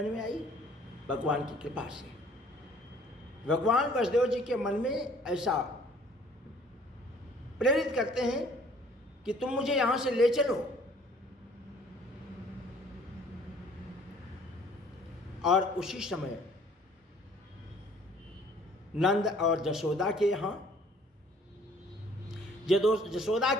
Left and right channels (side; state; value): both; normal; correlation 0.56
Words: में आई? भगवान की कृपा से। भगवान वसुदेव जी के मन में ऐसा प्रेरित करते हैं कि तुम मुझे यहां से ले चलो, और उसी समय नंद और जसोदा के यहाँ, जसोदा